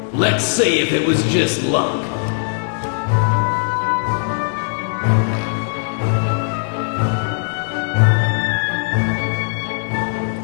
Let's see if it was just luck.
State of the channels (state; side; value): silent; right; digital silence